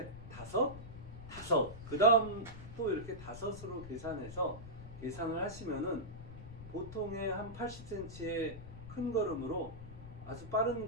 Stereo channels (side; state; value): left; noise; rumble, 12 dB below the sound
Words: 다섯 그 다음 또 이렇게 다섯으로 계산해서 계산을 하시면은 보통의 한 80cm의 큰 걸음으로 아주 빠른